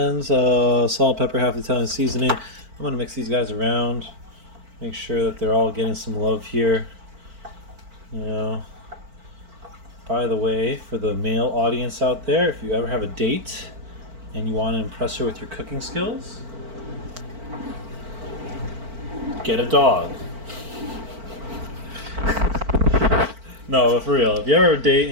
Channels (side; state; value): left; late; 4.5 ms